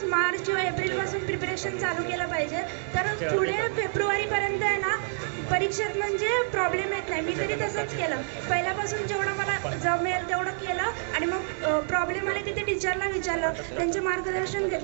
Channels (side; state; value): left; silent; digital silence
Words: मार्च किंवा एप्रिलपासून प्रिपरेशन चालू केलं पाहिजे. तर पुढे फेब्रुवारीपर्यंत आहे ना परीक्षेत म्हणजे प्रॉब्लेम येत नाही. मी तरी तसंच केलं. पहिल्यापासून जेवढं मला जमेल तेवढं केलं आणि मग प्रॉब्लेम आले तिथे टीचरला विचारलं, त्यांचे मार्गदर्शन